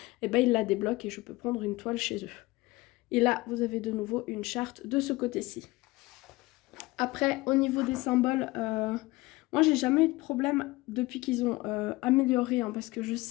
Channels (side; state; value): right; quieter; 20.8 dB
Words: ils la débloquent et je peux prendre une toile chez eux. Et là, vous avez de nouveau une charte de ce côté-ci. Après, au niveau des symboles, moi, j'ai jamais eu de problème depuis qu'ils ont amélioré, hein, parce que je